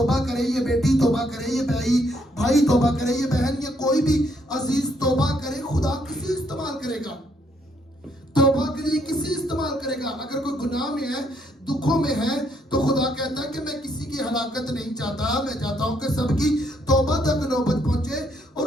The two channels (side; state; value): both; normal; correlation 0.71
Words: करे, ये बेटी तौबा करे, ये भाई तौबा करे, ये बहन, ये कोई भी अजीज तौबा करे। खुदा किसी इस्तेमाल करेगा, तौबा के लिए किसी इस्तेमाल करेगा। अगर कोई गुनाह में है, दुखों में है, तो खुदा कहता है कि मैं किसी की हलाकत नहीं चाहता, मैं चाहता हूं कि सबकी तौबा तक नौबत पहुंचे।